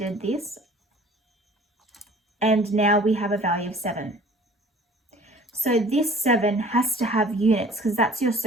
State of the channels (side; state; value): both; normal; correlation 0.50